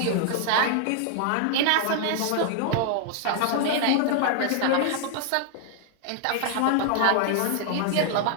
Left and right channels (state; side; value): different; both; correlation 0.00